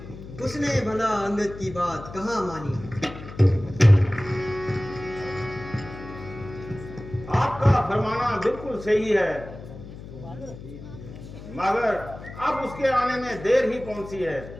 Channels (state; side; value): noise; left; hum, 14 dB below the sound